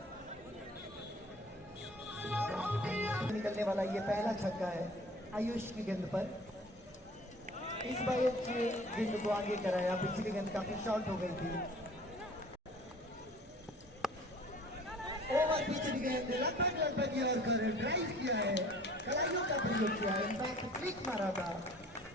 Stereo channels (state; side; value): normal; both; correlation 0.49